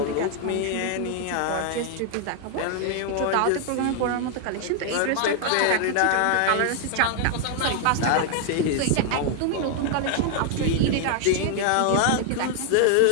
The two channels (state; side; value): different; both; correlation 0.00